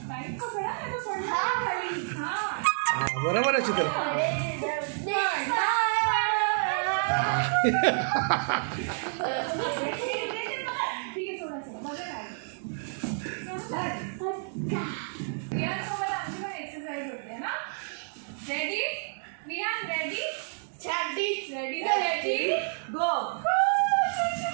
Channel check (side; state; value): left; silent; 58 dB below the other